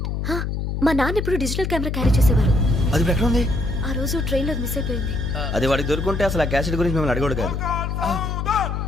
మా నాన్న ఎప్పుడు డిజిటల్ కెమెరా క్యారీ చేసేవారు. అది ఇప్పుడు ఎక్కడ ఉంది? ఆ రోజు ట్రైన్లో మిస్ అయిపోయింది. అది వాడికి దొరుకుంటే అసలు ఆ క్యాసెట్ గురించి మిమ్మల్ని అడగడు కాదు.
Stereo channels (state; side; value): noise; left; hum, 2 dB below the sound